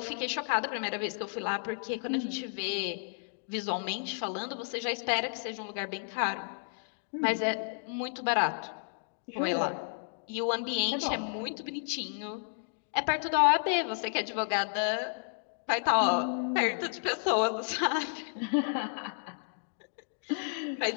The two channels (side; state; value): right; silent; digital silence